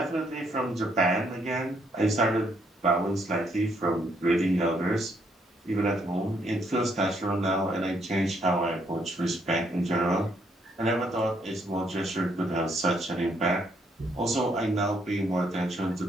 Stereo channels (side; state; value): both; normal; correlation 0.71